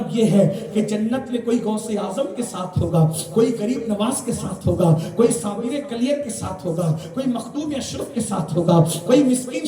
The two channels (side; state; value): both; identical; correlation 1.00